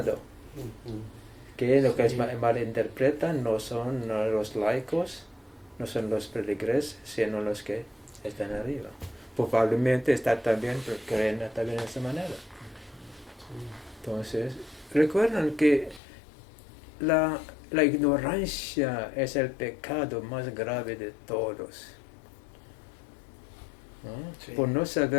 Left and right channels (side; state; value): right; drops out; at 16.0 s